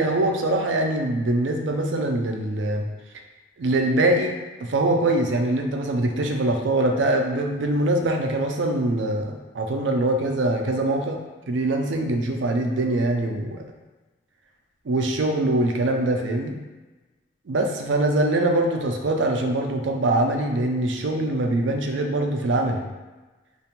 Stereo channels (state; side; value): normal; both; correlation 0.27